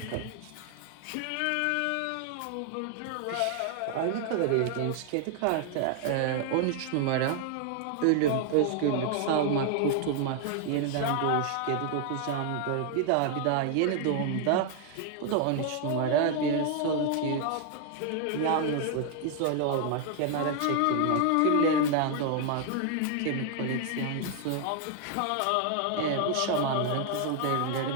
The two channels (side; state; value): both; different; correlation 0.00